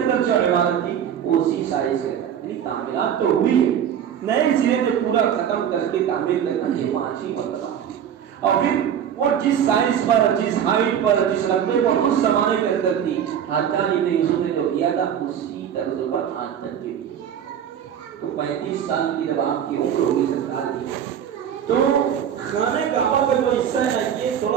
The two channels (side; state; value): left; quieter; 9.0 dB